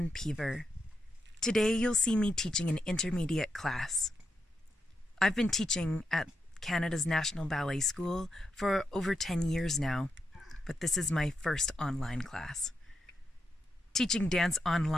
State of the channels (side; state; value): both; normal; correlation 0.85